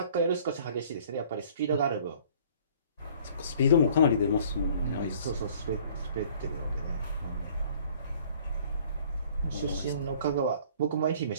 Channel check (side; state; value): both; inverted; correlation -0.54